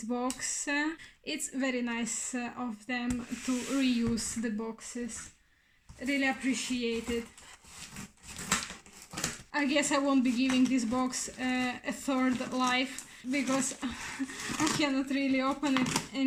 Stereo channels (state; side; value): identical; both; correlation 1.00